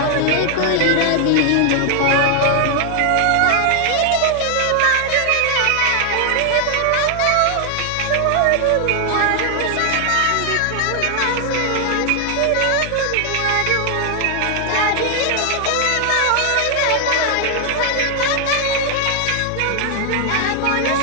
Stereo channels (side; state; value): both; different; correlation 0.00